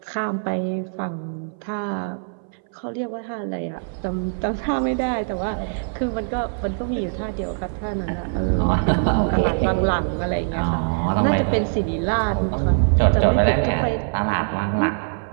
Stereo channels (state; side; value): silent; left; 60 dB below the other